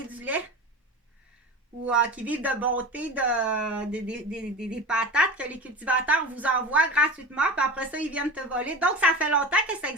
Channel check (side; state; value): both; normal; correlation 0.31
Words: du lait. Ou qui vivent de bonté des patates que les cultivateurs vous envoient gratuitement. Puis après ça, ils viennent te voler. Donc, ça fait longtemps que ça